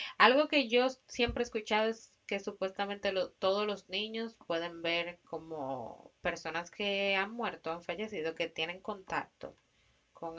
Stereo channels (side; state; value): both; identical; correlation 1.00